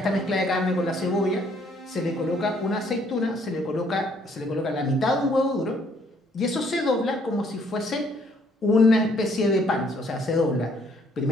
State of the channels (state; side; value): normal; both; correlation 0.65